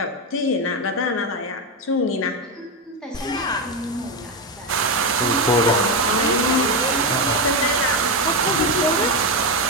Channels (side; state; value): both; normal; correlation 0.10